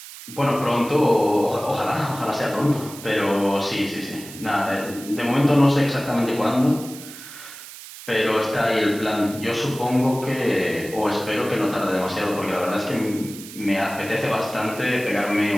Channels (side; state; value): right; noise; hiss, 15 dB below the sound